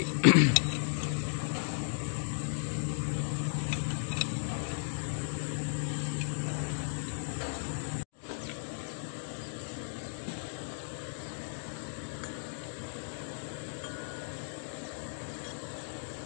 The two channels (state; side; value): silent; right; digital silence